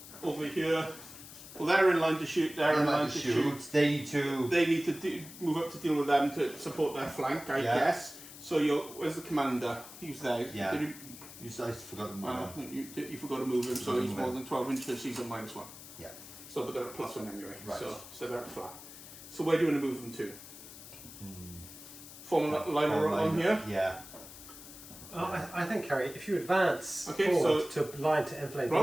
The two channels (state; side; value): noise; left; hiss, 15 dB below the sound